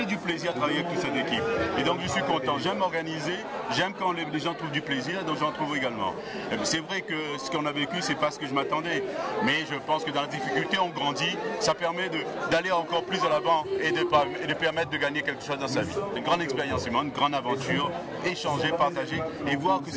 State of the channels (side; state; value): both; identical; correlation 1.00